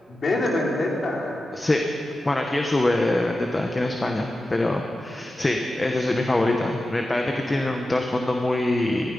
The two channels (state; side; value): normal; both; correlation 0.92